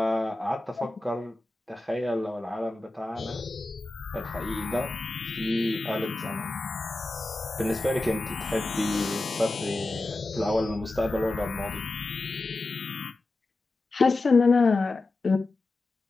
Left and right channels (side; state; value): right; quieter; 3.0 dB